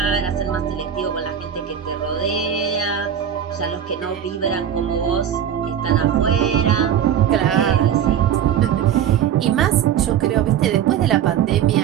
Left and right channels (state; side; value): quieter; left; 9.2 dB